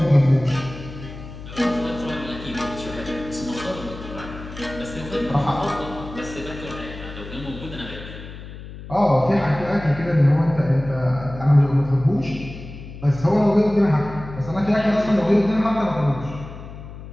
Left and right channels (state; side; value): noise; left; hum, 13 dB below the sound